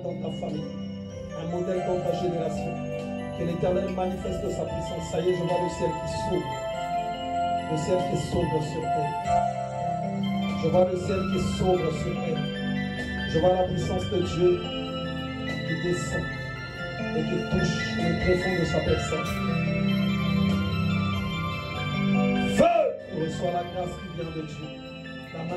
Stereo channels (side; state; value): both; identical; correlation 1.00